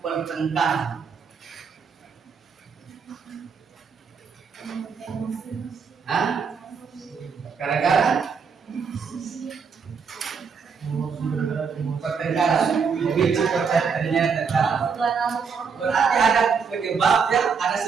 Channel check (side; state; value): left; quieter; 5.8 dB